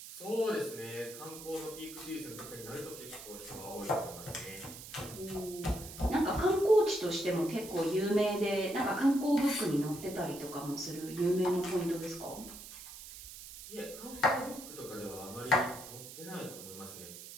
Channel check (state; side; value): noise; right; hiss, 13 dB below the sound